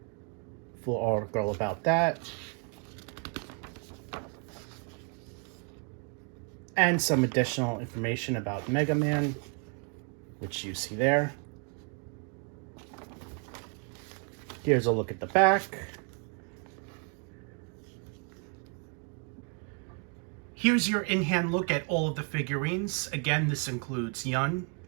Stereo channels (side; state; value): left; quieter; 38.6 dB